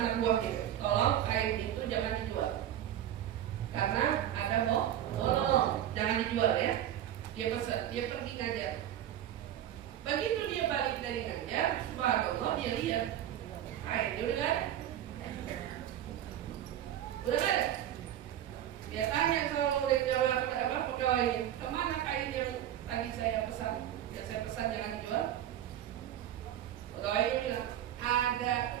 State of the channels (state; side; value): quieter; left; 11.4 dB